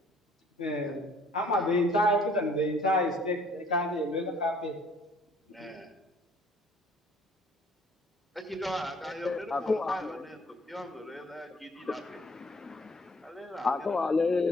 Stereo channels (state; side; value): normal; both; correlation 0.58